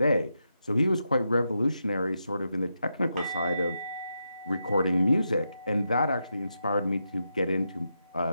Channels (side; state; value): both; inverted; correlation -0.85